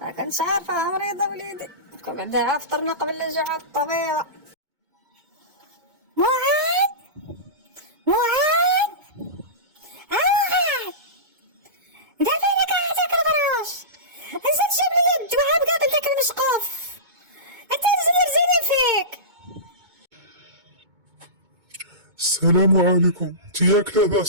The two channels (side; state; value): left; late; 2.2 ms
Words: ما كنتش عارفة مريضة وليدي. كون بعدا فطرنا قبل الرجوع الطبيعة. معاد معاد معاد انت فينك هذاك البراش؟ نزل جيب لي الدواء قبل داك المشقوف، انت زيني فيك. السلام عليكم، انت ياك